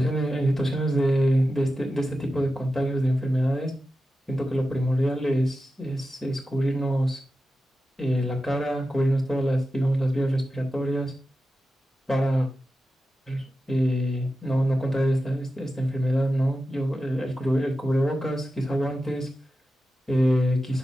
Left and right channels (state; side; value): normal; both; correlation 0.92